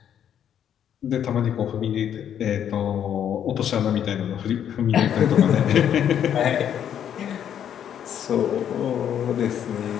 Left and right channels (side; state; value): right; quieter; 9.4 dB